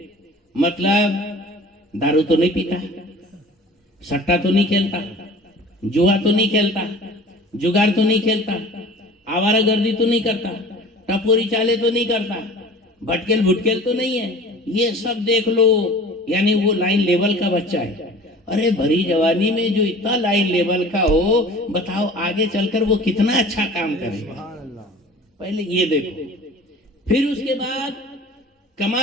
مطلب دارو تو نہیں پیتا، سٹا تو نہیں کھیلتا، جوا تو نہیں کھیلتا، جگار تو نہیں کھیلتا، آوارہ گردی تو نہیں کرتا، ٹپوری چالے تو نہیں کرتا، بھٹکل بھٹکل تو نہیں ہے. یہ سب دیکھ لو، یعنی وہ لائن لیول کا بچہ ہے. ارے بھری جوانی میں جو اتنا لائن لیول کا ہو، بتاؤ آگے چل کر وہ کتنا اچھا کام کرے گا. پہلے یہ دیکھو. پھر اس کے بعد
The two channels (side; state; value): both; normal; correlation 0.43